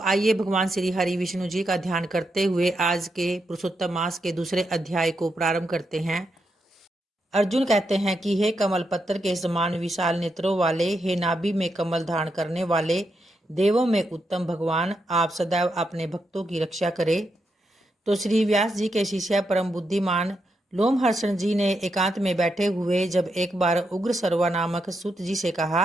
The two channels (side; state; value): both; normal; correlation 0.83